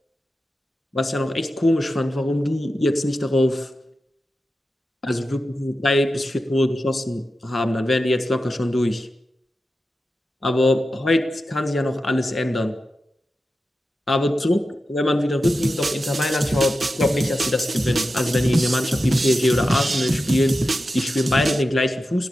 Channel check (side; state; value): both; normal; correlation 0.91